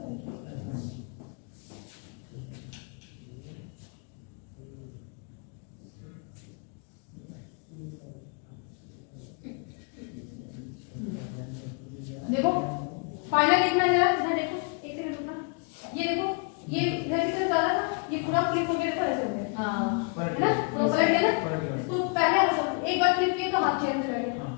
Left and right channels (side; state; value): right; quieter; 38.1 dB